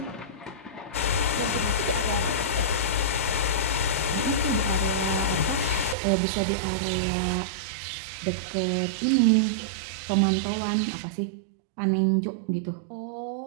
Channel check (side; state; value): left; drops out; at 6.0 s